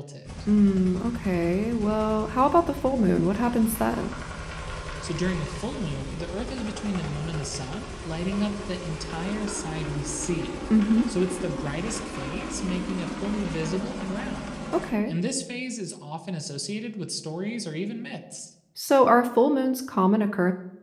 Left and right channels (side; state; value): both; identical; correlation 1.00